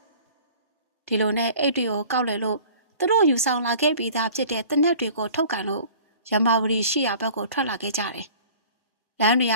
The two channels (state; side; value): inverted; both; correlation -0.47